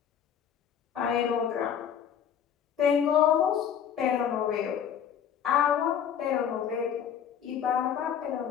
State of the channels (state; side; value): quieter; right; 8.6 dB